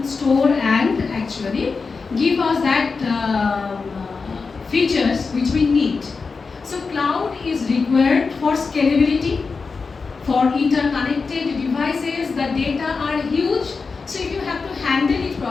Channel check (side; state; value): right; quieter; 4.7 dB